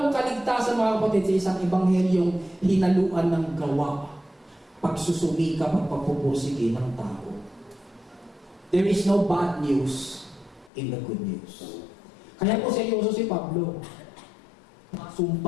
kaligtasan mga kapatid sa isang ebanghelyong hinaluan ng gawa, pagsusumika, pagpapupursige ng tao. There is no bad news in the good news. Kaya po seryoso si Pablo.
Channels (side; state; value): right; drops out; at 10.7 s